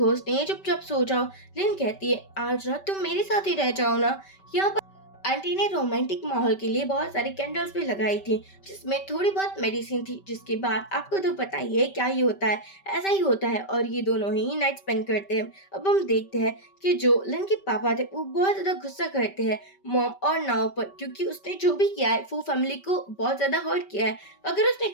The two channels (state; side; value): late; right; 5.2 ms